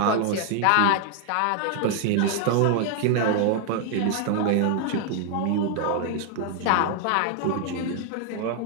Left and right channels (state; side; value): different; both; correlation 0.00